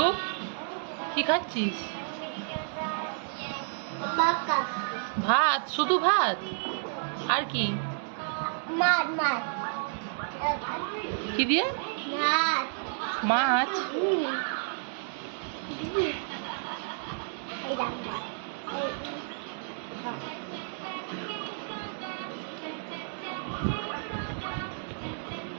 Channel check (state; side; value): silent; left; digital silence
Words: কি খাচ্ছিস? ভাত, শুধু ভাত? আর কি? কি দিয়ে? মাছ।